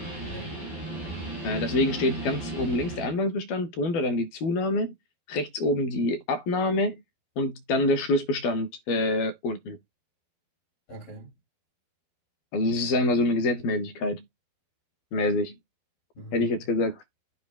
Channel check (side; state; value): right; late; 12 ms